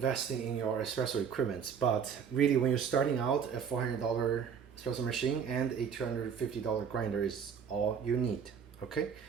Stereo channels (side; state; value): left; quieter; 7.1 dB